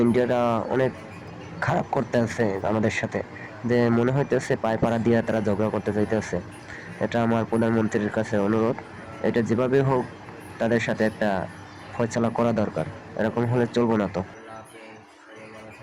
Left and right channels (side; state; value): both; identical; correlation 1.00